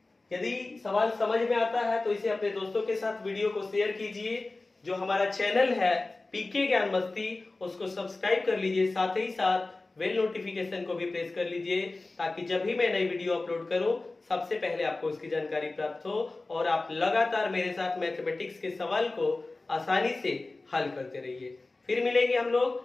यदि सवाल समझ में आता है तो इसे अपने दोस्तों के साथ वीडियो को शेयर कीजिए। जो हमारा चैनल है पीके ज्ञान मस्ती उसको सब्सक्राइब कर लीजिए, साथ ही साथ बेल नोटिफिकेशन को भी प्रेस कर लीजिए ताकि जब भी मैं नई वीडियो अपलोड करूं सबसे पहले आपको उसकी जानकारी प्राप्त हो और आप लगातार मेरे साथ मैथमेटिक्स के सवाल को आसानी से हल करते रहिए। फिर मिलेंगे हम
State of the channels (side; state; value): right; quieter; 3.3 dB